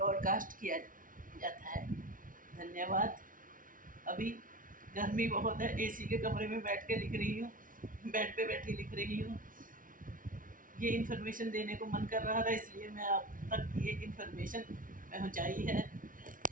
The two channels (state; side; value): late; left; 0.39 ms